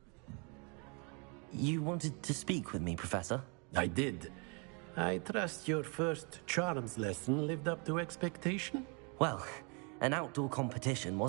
You wanted to speak with me, Professor? I did. I trust your first charms lesson lived up to expectation? Well, an outdoor competition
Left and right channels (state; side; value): quieter; left; 34.1 dB